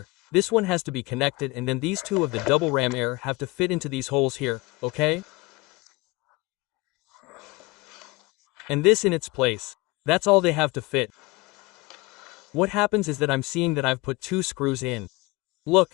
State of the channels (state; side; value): quieter; right; 23.4 dB